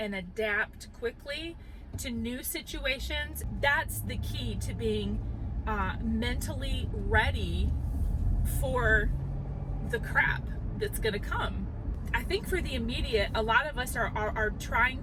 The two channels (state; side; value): identical; both; correlation 1.00